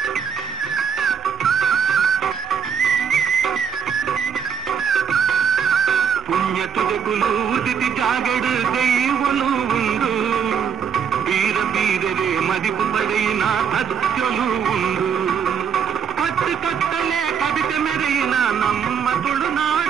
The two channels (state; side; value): quieter; left; 7.3 dB